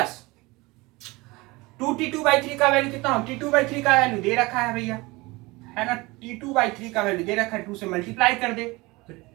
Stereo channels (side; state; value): left; quieter; 22.9 dB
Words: 2t2/3 का वैल्यू कितना हो, t2/3 का वैल्यू दे रखा है भैया, है ना। t2/3 का वैल्यू दे रखा है, 2 से मल्टीप्लाई कर दे तो